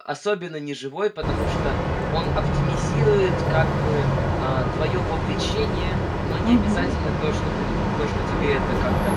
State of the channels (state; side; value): identical; both; correlation 1.00